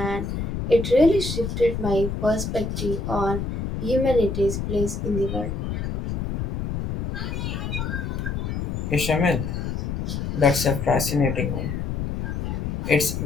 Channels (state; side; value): noise; left; rumble, 3 dB below the sound